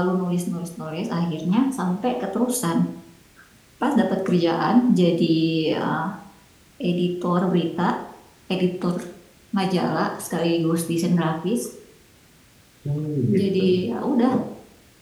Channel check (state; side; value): identical; both; correlation 1.00